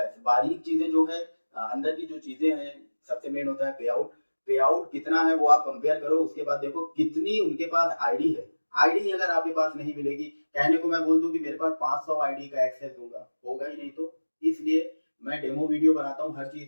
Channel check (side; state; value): both; inverted; correlation -1.00